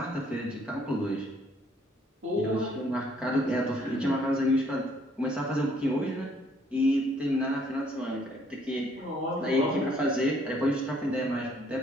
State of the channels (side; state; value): both; normal; correlation 0.64